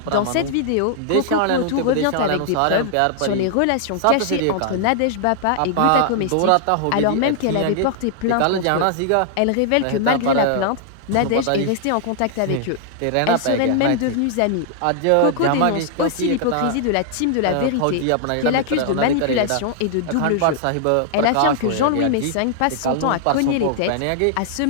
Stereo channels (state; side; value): different; both; correlation -0.01